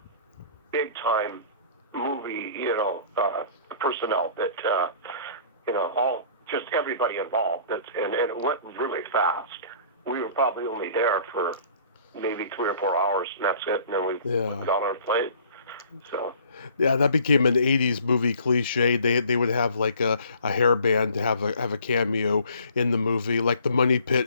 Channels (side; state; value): both; inverted; correlation -0.52